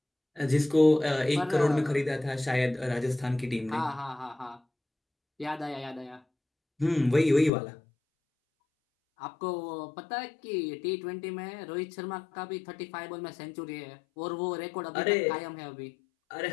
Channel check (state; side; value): drops out; right; at 7.5 s